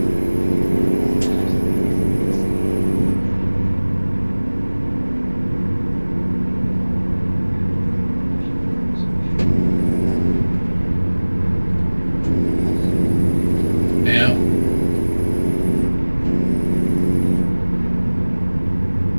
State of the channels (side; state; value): both; inverted; correlation -1.00